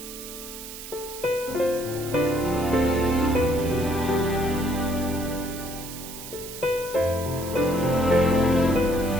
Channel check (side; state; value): right; noise; hiss, 12 dB below the sound